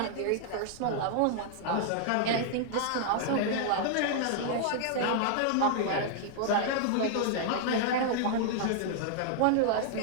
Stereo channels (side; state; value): both; different; correlation -0.01